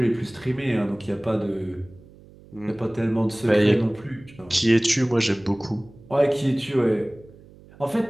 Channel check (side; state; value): right; noise; hum, 23 dB below the sound